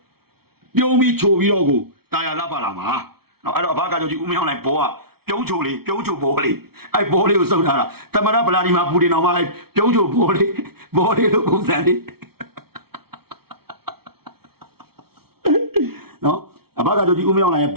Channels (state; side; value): late; left; 0.95 ms